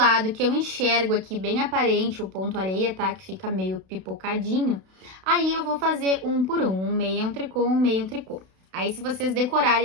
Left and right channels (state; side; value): late; left; 32 ms